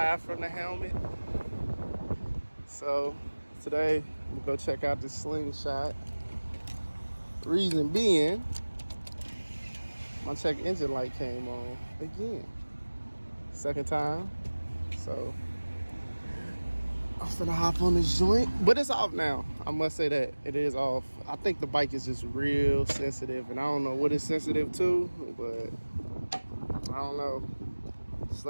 from the helmet. So today I'm gonna go check out this slingshot. Reason being, my check engine light came on again. Second time. So I'm finna hop on this joint. But it's off now. I must say that. It is off. I think the bike is just real sensitive, and I don't know what it's sensitive to, but I don't know.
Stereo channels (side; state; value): both; inverted; correlation -1.00